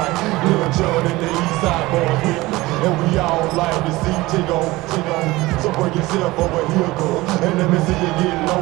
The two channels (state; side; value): quieter; left; 19.9 dB